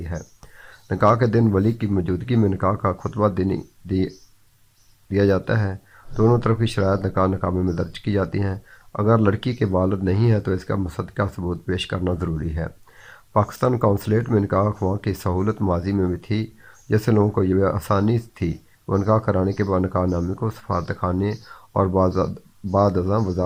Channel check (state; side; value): identical; both; correlation 1.00